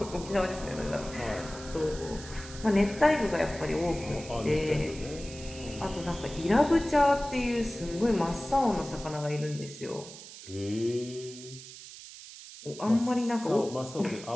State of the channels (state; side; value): noise; right; hiss, 15 dB below the sound